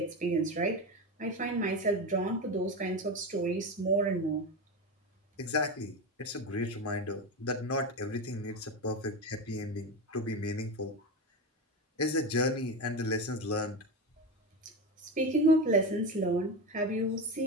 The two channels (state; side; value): normal; both; correlation 0.20